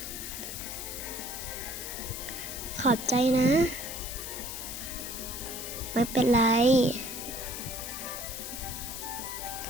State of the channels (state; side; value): noise; left; hiss, 7 dB below the sound